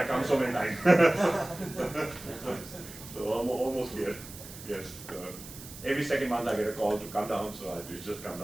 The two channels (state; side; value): noise; right; hiss, 15 dB below the sound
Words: come so many times. So almost here, yes. Every second month I get a call to come down, so I just come